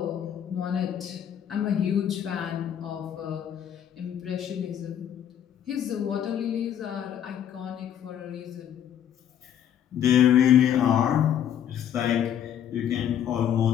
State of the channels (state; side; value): quieter; right; 9.8 dB